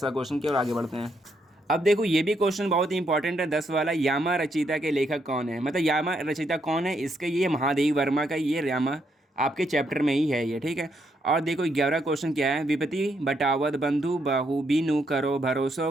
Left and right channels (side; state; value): both; normal; correlation 0.76